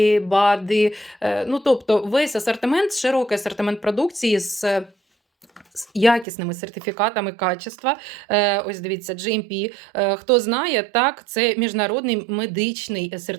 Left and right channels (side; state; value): left; drops out; at 6.2 s